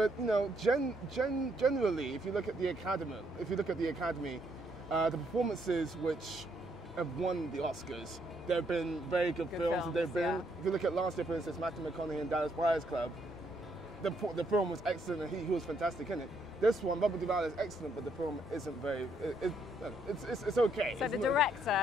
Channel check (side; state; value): both; normal; correlation 0.72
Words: you know, generally, if you look at the Academy, the performances which have won the Oscars, there have been very good films. If you look at last year, for instance, Matthew McConaughey and Dallas Buyers Club, the film was excellent and he was fantastic in it. This one, Robert Duvall, is excellent, but the film isn't very. It's okay. So the director